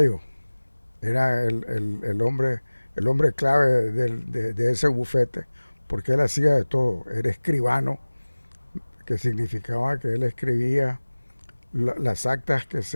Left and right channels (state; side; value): inverted; both; correlation -1.00